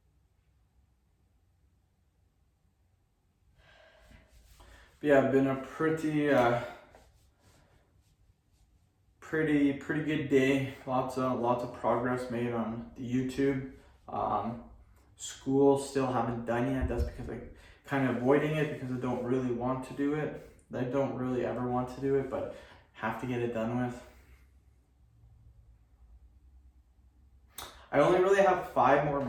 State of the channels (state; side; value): identical; both; correlation 1.00